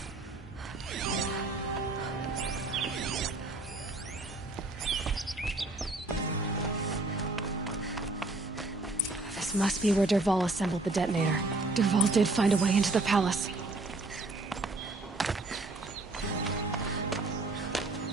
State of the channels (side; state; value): left; quieter; 3.1 dB